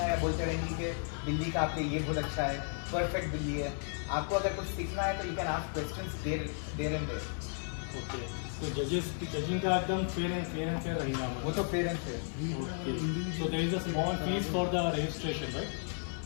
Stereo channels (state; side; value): silent; right; 55 dB below the other